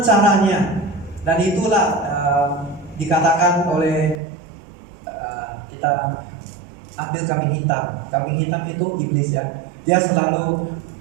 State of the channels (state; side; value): drops out; left; at 4.2 s